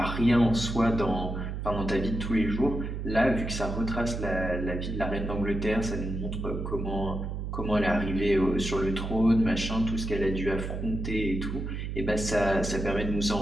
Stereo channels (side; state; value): right; noise; hum, 4 dB below the sound